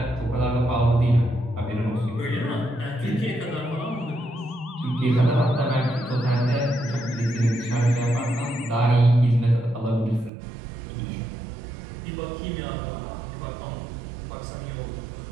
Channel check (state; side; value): drops out; left; at 10.3 s